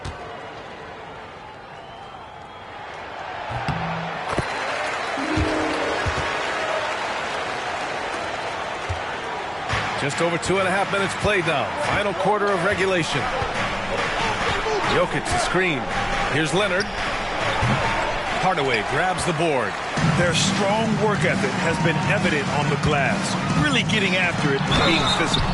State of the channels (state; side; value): identical; both; correlation 1.00